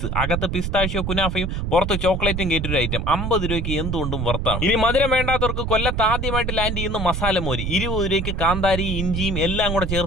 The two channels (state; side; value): noise; right; rumble, 2 dB below the sound